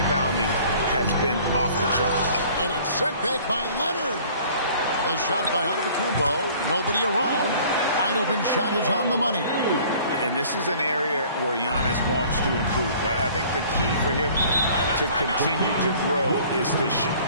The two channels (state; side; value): inverted; both; correlation -0.51